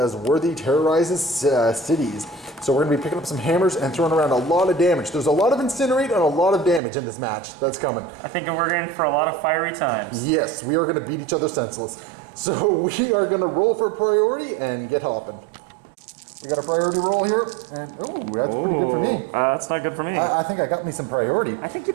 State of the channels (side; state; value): left; drops out; at 6.8 s